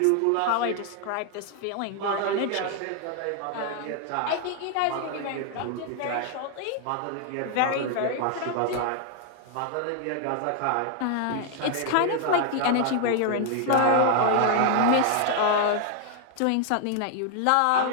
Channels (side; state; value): both; different; correlation 0.00